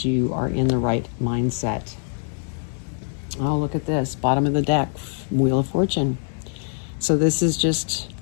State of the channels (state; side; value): silent; right; digital silence